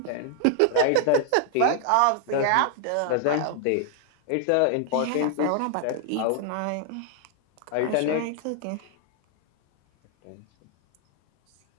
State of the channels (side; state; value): both; different; correlation 0.00